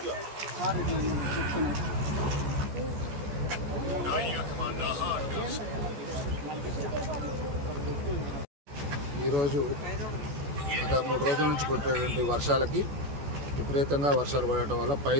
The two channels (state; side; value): late; left; 14 ms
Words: ఈరోజు గత 3 రోజుల నుంచి కొట్టేటువంటి వర్షాలకి విపరీతంగా వర్షాలు పడటం వల్ల